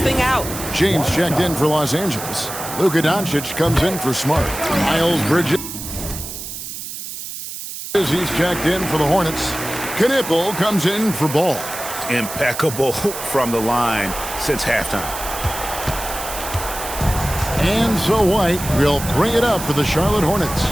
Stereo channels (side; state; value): right; noise; hiss, 9 dB below the sound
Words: out. James checked in for Los Angeles. Luka Doncic comes in for Smart. Miles Bridges. He's checked in for the Hornets. Knipple comes in for Ball. Impeccable from the line since halftime. And so White will bring it up for the Charlotte Hornets.